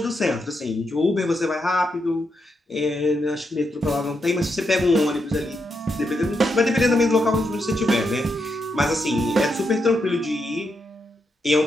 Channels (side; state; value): both; normal; correlation 0.82